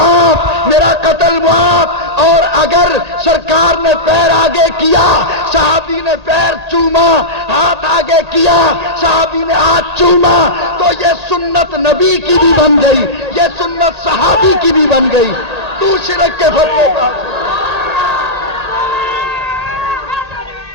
میرا قتل معاف۔ اور اگر سرکار نے پیر آگے کیا، صحابی نے پیر چوما، ہاتھ آگے کیا، صحابی نے ہاتھ چوما، تو یہ سنت نبی کی بھی بن گئی، یہ سنت صحابی کی بھی بن گئی۔ تو شرک کے فتوے پر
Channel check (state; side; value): late; left; 1.8 ms